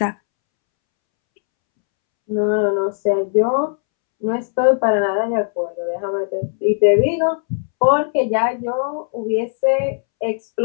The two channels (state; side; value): silent; right; 67 dB below the other